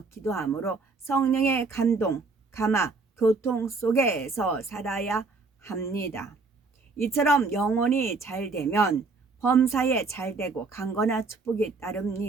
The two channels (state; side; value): quieter; left; 4.1 dB